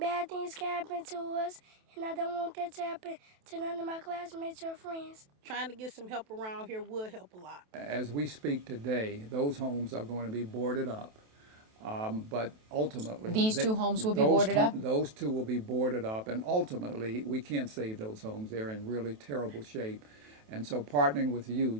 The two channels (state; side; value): late; left; 28 ms